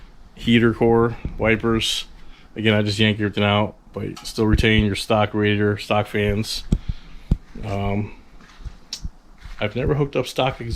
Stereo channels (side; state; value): both; identical; correlation 1.00